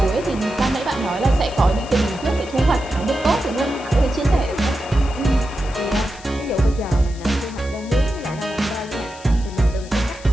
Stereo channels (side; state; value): left; noise; hiss, 20 dB below the sound